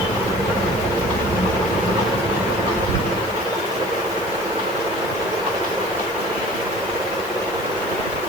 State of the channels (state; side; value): noise; left; hiss, 18 dB below the sound